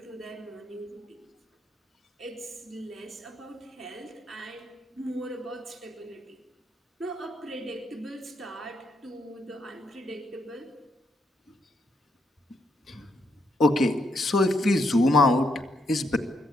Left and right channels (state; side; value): normal; both; correlation 0.77